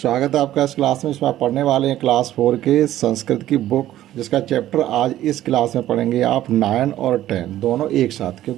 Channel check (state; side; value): quieter; left; 13.4 dB